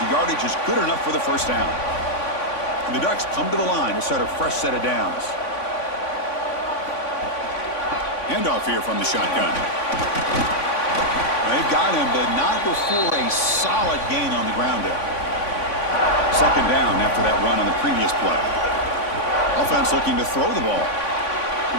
yardage is good enough for the first down. And the Ducks come to the line to start a fresh set of downs. Handoff here from the shotgun. They've got him, but not before a solid gain on the ground there. Second down after that run on the previous play. Offense looking to throw the ball.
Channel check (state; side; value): late; right; 3.5 ms